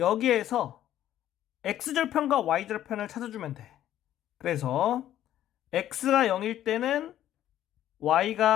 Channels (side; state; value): right; quieter; 12.1 dB